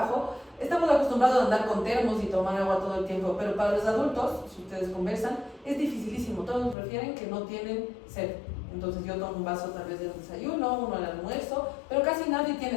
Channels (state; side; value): drops out; right; at 6.8 s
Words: estamos acostumbrados a andar con termos y tomar agua todo el tiempo, pero para los adultos, si ustedes conversan, es dificilísimo. Todos prefieren que no tienen sed. Entonces yo tomo un vaso tal vez del desayuno, uno al almuerzo, pero casi nadie